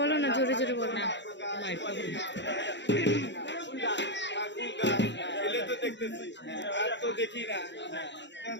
না, জোরে জোরে বলো না। দেখতেছি আর তো দেখি না,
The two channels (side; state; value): right; late; 0.52 ms